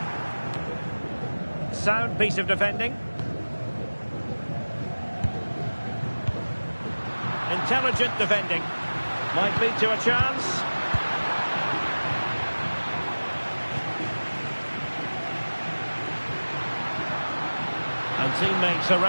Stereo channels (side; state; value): both; inverted; correlation -1.00